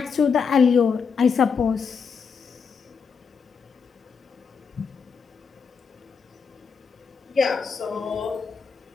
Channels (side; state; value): right; quieter; 5.8 dB